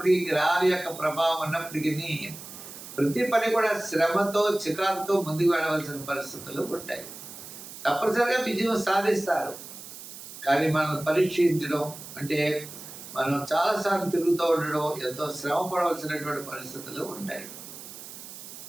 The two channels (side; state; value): right; noise; hiss, 13 dB below the sound